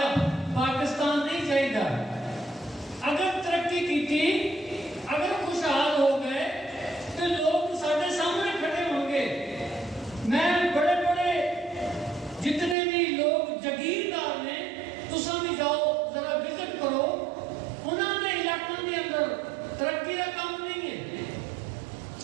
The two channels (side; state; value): left; drops out; at 12.8 s